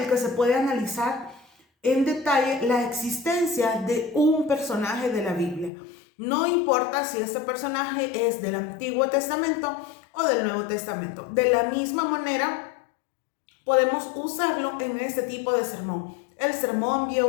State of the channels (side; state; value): right; drops out; at 5.7 s